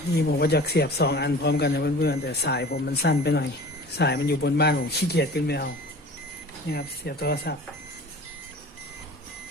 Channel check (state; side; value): normal; both; correlation 0.41